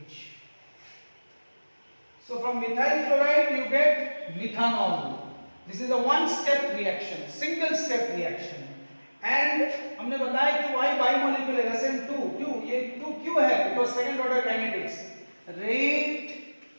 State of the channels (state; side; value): inverted; both; correlation -1.00